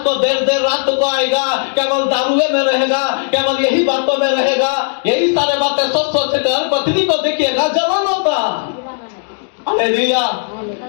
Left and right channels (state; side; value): silent; right; digital silence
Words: को देर रात को आएगा, केवल दारुए में रहेगा, केवल यही बातों में रहेगा, यही सारे बातें सोच कर पत्नी को देखिएगा जलन होता। हालेलुया।